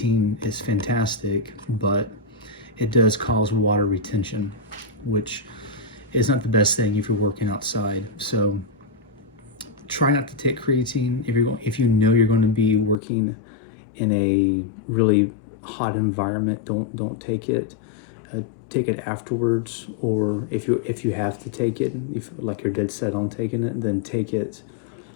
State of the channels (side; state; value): right; drops out; at 13.0 s